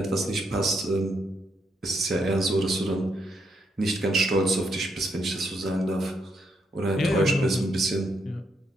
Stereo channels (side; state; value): both; normal; correlation 0.77